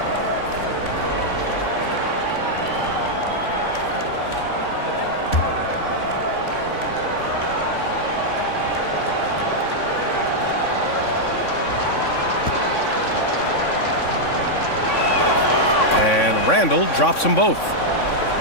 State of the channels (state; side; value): late; right; 3.6 ms